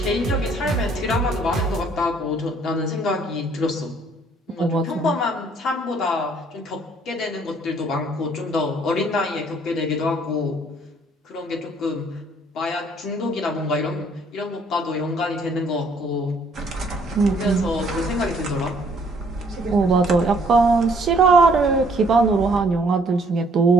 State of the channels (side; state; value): both; normal; correlation 0.62